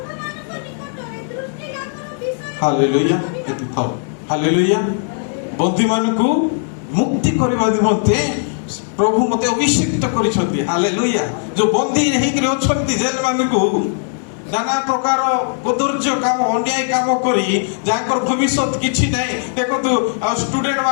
ହାଲେଲୁୟା। ଏଠି ଥାଉ। ହାଲେଲୁୟା। ବନ୍ଦୀମାନଙ୍କୁ ମୁକ୍ତି କରିବା ନିମନ୍ତେ ପ୍ରଭୁ ମତେ ଅଭିଷେକ କରିଛନ୍ତି। ହାଲେଲୁୟା। ଯୋଉ ବନ୍ଦୀ ହେଇକିରି ଅଛନ୍ତି ଜେଲ ମାନଙ୍କୁ, নানা প্রকার কদর্য কাম অন্যায় কাম করি যাঙ্কর ভবিষ্যৎ কিছু নাই। দেখন্তু স্টুডেন্ট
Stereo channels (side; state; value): right; silent; 60 dB below the other